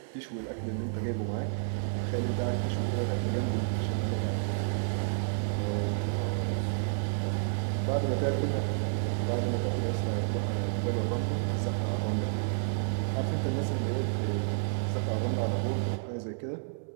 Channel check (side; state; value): left; silent; digital silence